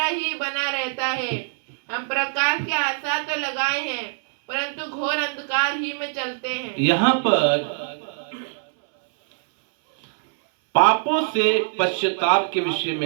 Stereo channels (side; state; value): left; silent; 63 dB below the other